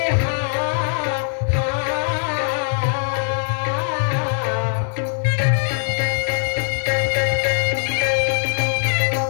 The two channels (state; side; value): silent; right; 56 dB below the other